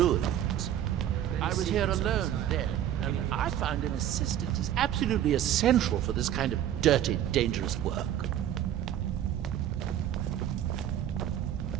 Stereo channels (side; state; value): left; quieter; 11.1 dB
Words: I was here alone then, and I found an assistant is absolutely essential for this kind of dirty, dangerous work.